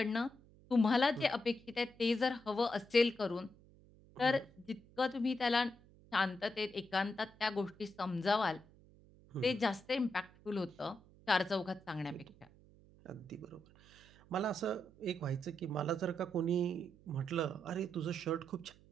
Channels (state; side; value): noise; right; hum, 25 dB below the sound